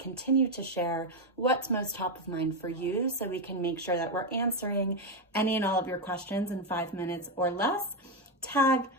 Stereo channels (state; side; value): normal; both; correlation 0.07